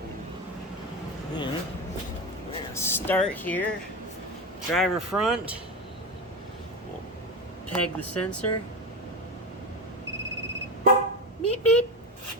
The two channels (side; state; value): both; normal; correlation 0.20